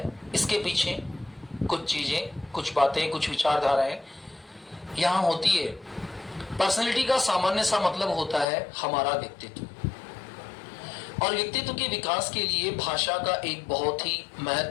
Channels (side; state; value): right; drops out; at 8.5 s